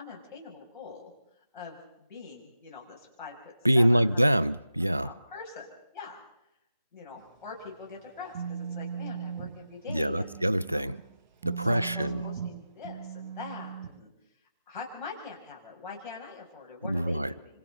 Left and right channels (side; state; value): both; inverted; correlation -0.92